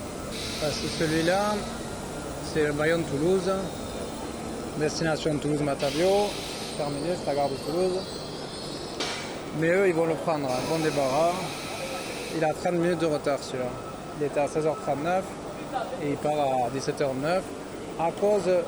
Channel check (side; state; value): both; identical; correlation 1.00